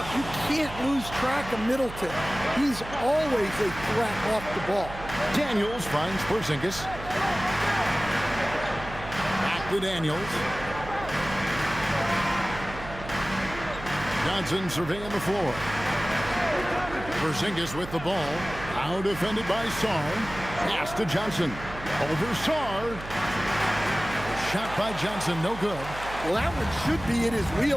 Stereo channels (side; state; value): right; noise; hum, 12 dB below the sound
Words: you can't lose track of Middleton. He's always a threat off the ball. Daniels finds Porzingis. Back to Daniels. Johnson surveying the floor. Porzingis with the ball. Now defended by Sarr. Pass to Johnson. Over Sarr. Shot by Johnson, no good. Well, that one should be in his